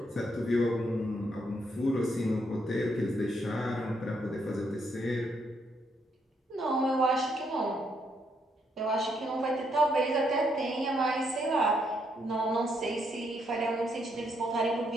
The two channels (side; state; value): both; normal; correlation 0.75